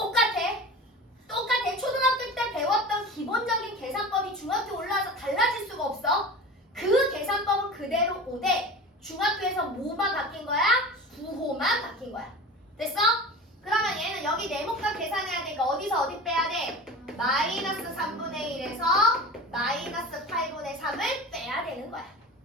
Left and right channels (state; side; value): normal; both; correlation 0.33